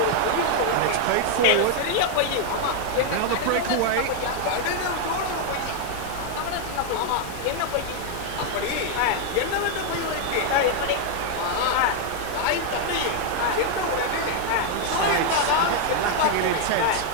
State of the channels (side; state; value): both; different; correlation 0.00